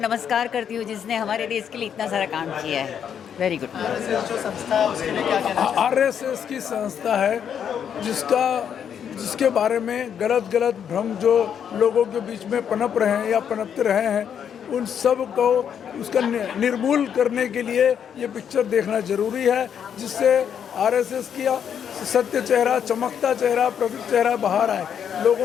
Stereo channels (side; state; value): right; quieter; 8.3 dB